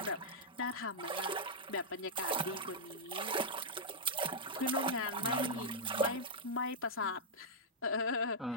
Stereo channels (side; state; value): both; normal; correlation -0.07